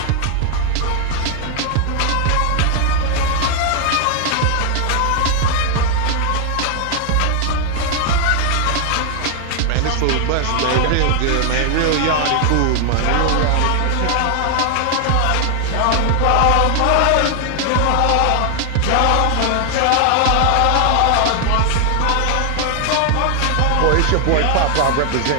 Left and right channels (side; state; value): both; different; correlation 0.00